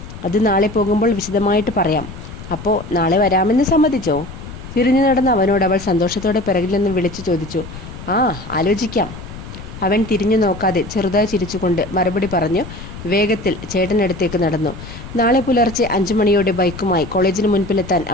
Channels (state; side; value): noise; left; rumble, 13 dB below the sound